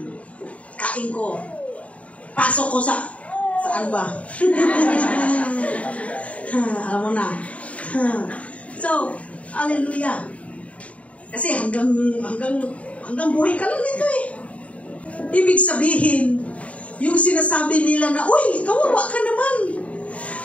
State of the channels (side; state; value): right; late; 0.066 ms